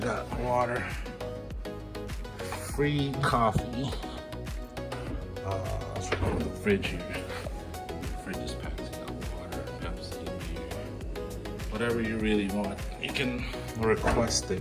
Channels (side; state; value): both; identical; correlation 1.00